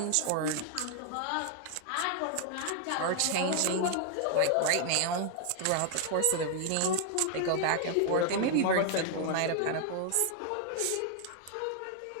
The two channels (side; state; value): both; different; correlation 0.00